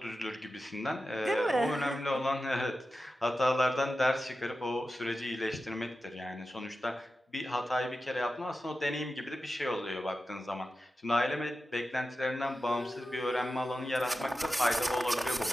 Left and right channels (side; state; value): both; normal; correlation 0.92